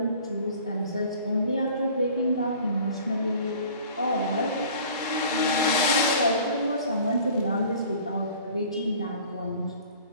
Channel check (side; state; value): both; inverted; correlation -0.47